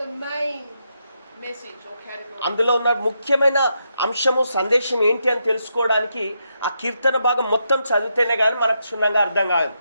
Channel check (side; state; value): both; inverted; correlation -0.81